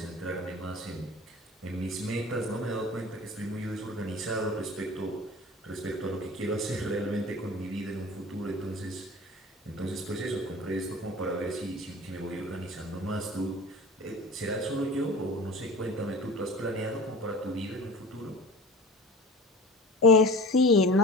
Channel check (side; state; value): both; normal; correlation 0.38